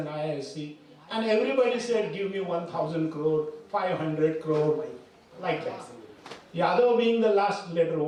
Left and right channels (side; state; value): both; identical; correlation 1.00